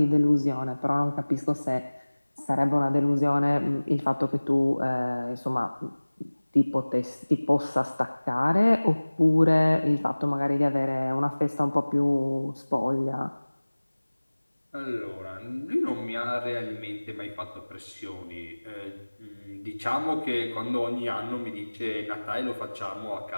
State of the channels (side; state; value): both; inverted; correlation -1.00